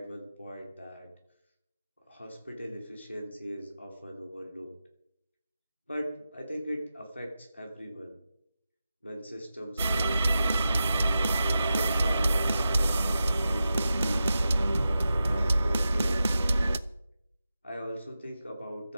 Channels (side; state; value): both; inverted; correlation -0.91